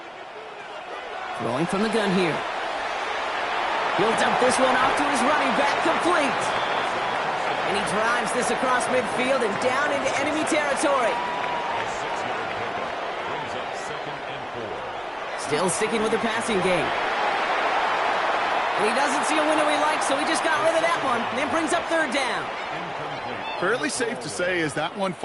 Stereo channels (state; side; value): identical; both; correlation 1.00